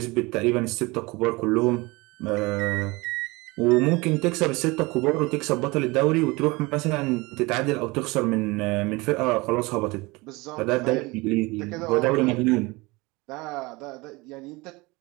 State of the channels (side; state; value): left; quieter; 23.8 dB